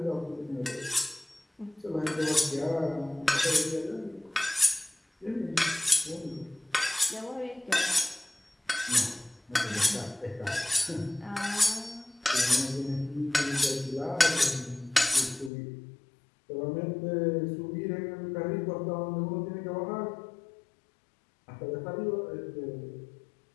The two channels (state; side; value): drops out; right; at 15.5 s